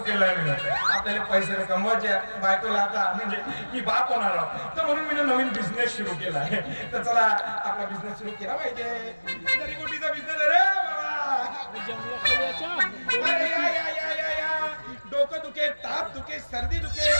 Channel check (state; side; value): inverted; both; correlation -1.00